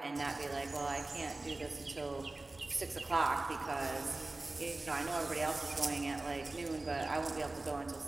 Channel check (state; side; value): quieter; left; 3.0 dB